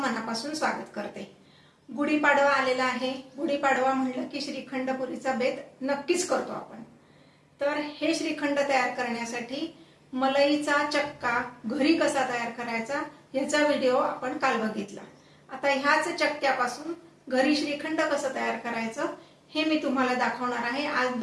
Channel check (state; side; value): identical; both; correlation 1.00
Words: स्वागत करते. गुढीपाडवा आलेला आहे. गुढीपाडवा म्हणलं की श्रीखंडपुरीचा बेत नक्कीच करतो आपण. तर हे श्रीखंड तयार करण्यासाठी मलईचा चक्का घरी कसा तयार करायचा याचा व्हिडिओ आपण काल बघितला. आता ह्याच चक्क्यापासून घरी श्रीखंड कसं तयार करायचं हे मी तुम्हाला दाखवणार आहे. आज